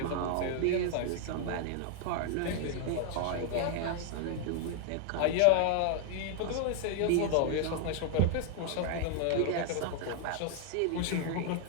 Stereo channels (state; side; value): different; both; correlation 0.00